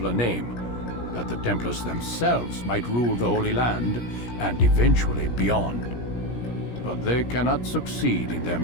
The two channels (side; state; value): right; late; 17 ms